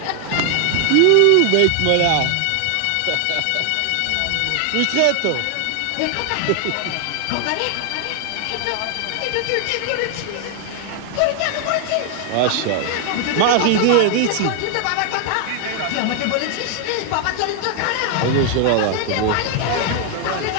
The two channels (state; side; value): different; both; correlation 0.00